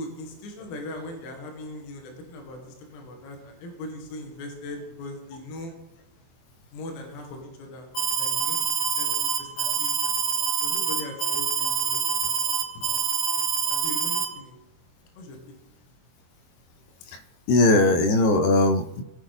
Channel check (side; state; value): right; late; 23 ms